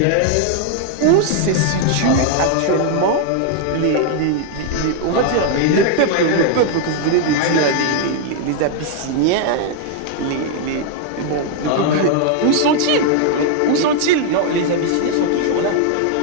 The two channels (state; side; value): different; both; correlation 0.00